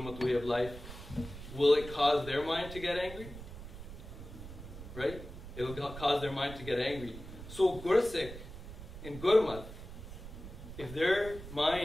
way of life, will it cause their mind to get angry? Right? It'll cause their mind to get angry. So Gursik in Gurmat, if their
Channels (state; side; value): noise; right; rumble, 12 dB below the sound